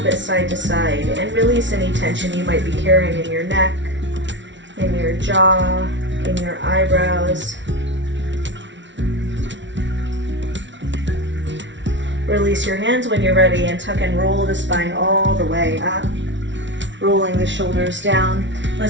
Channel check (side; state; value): left; late; 0.54 ms